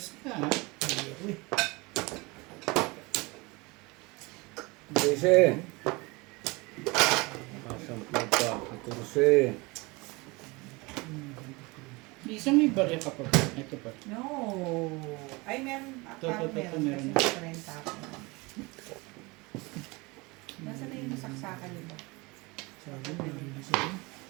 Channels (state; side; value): quieter; left; 25.1 dB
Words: ka, ha? Dese. Kasampu pa. 14. Isang may barya ka pa. Ito pa. No. Ay, meron. Ito, Parang ito, meron. meron. Kasi renta ako. Nasaan na yung nasaksakan nito? Sabi mo, nalinis ako.